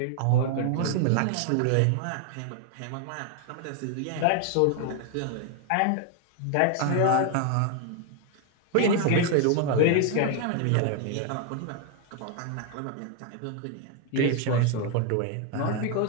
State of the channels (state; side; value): different; both; correlation 0.00